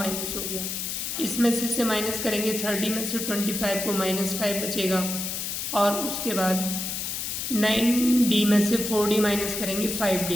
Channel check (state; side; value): noise; left; hiss, 3 dB below the sound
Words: हो गया। इसमें से माइनस करेंगे 30 में से 25 को -5 बचेगा और उसके बाद 9d में से 4d माइनस करेंगे